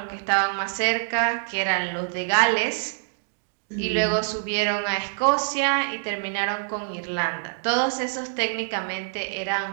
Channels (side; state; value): left; silent; digital silence